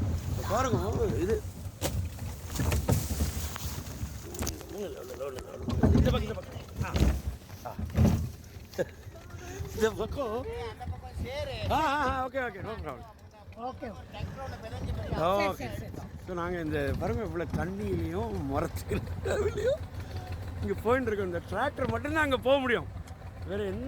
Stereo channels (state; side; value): identical; both; correlation 1.00